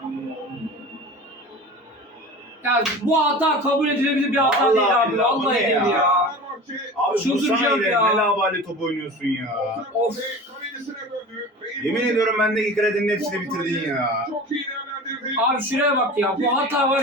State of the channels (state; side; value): normal; both; correlation 0.35